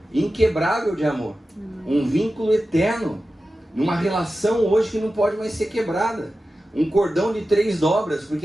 inquebrável de amor. Um vínculo eterno. Numa relação hoje que não pode mais ser quebrada. Um cordão de 3 dobras, porque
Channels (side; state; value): both; normal; correlation 0.93